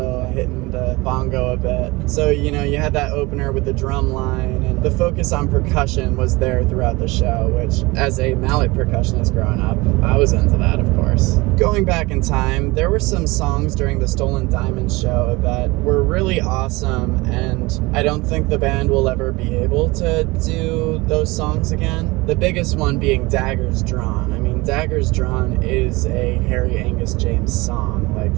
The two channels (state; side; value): quieter; left; 22.9 dB